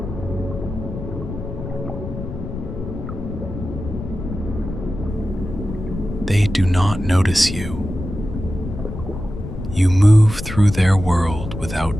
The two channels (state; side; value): noise; left; rumble, 8 dB below the sound